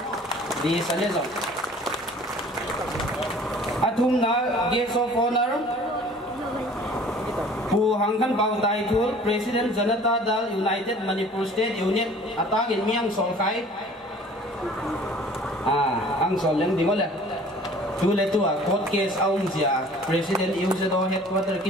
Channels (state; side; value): normal; both; correlation 0.49